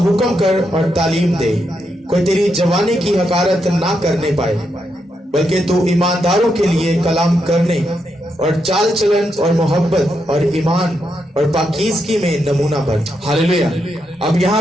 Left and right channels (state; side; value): normal; both; correlation 0.82